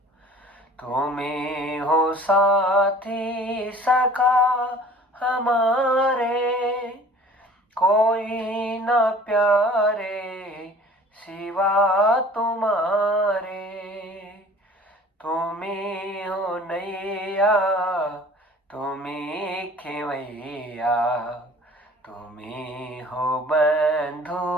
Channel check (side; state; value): both; normal; correlation 0.47